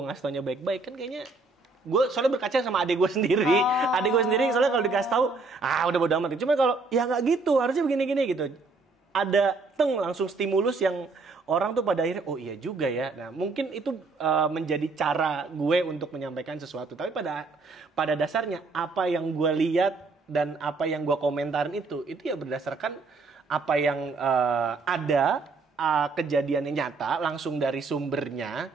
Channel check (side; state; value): left; quieter; 3.9 dB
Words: ngasih taunya baik-baik kan kayaknya gue soalnya berkaca sama adik gue sendiri. Adik gue sendiri soalnya kalau dikasih tahu udah bodo amat. Cuma kalau ya nggak gitu, harusnya begini-gini gitu. Ada langsung stimulus yang orang tuh pada akhirnya, oh iya juga ya. Nah mungkin itu menjadi cara gue untuk menyampaikan sesuatu. Tapi pada dasarnya apa yang gue lihat dan apa yang gue komentarin itu ya berdasarkan apa yang ada kejadiannya nyata langsung dari sumbernya